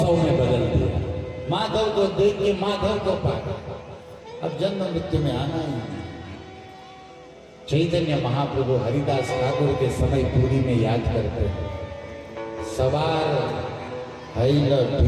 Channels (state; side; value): identical; both; correlation 1.00